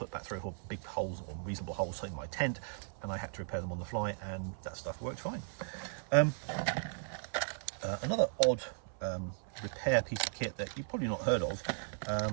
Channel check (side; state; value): left; silent; 53 dB below the other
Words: back 3 or 4 big holes or reasonable holes in my tent, and I had to repair them on the fly, and that stuff worked fine. Another odd repair piece of kit that you've probably not heard of